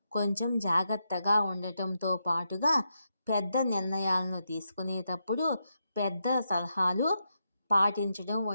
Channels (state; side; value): inverted; both; correlation -0.84